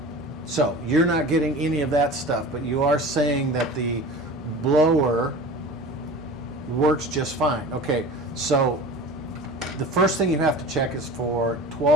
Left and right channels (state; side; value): normal; both; correlation 0.37